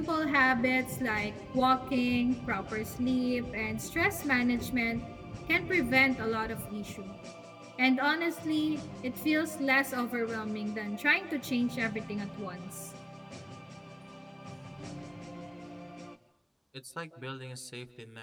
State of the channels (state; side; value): identical; both; correlation 1.00